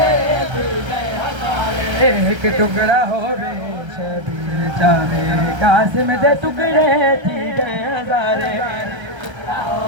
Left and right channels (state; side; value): late; left; 1.3 ms